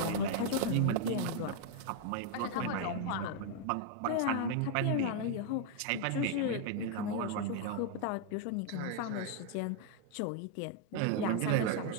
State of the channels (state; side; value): different; both; correlation 0.00